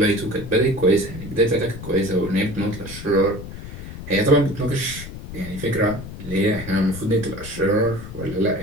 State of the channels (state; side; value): noise; left; rumble, 11 dB below the sound